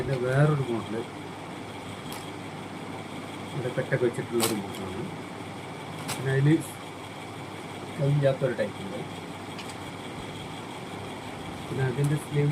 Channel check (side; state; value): both; identical; correlation 1.00